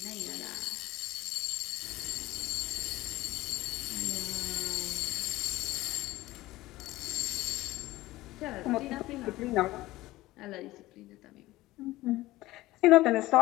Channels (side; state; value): right; quieter; 17.7 dB